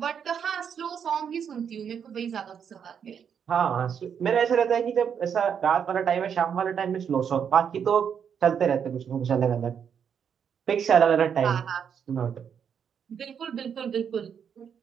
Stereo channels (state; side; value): quieter; left; 7.6 dB